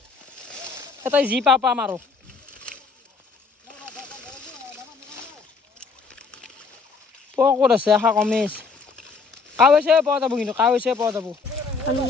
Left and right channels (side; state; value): right; quieter; 4.7 dB